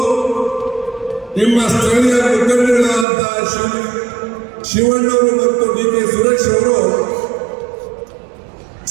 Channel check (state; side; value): drops out; left; at 3.1 s